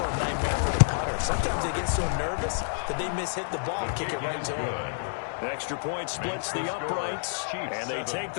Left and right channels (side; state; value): right; silent; digital silence